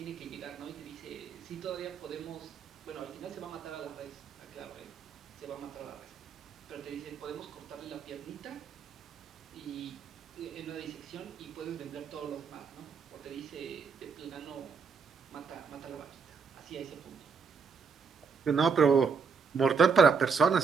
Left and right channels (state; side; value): quieter; left; 5.5 dB